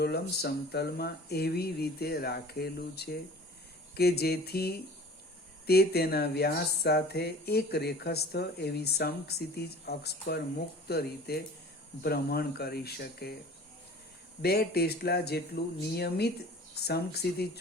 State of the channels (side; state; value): both; normal; correlation 0.44